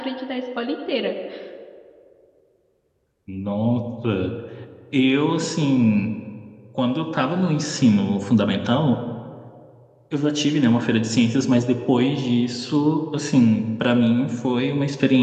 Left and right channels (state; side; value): identical; both; correlation 1.00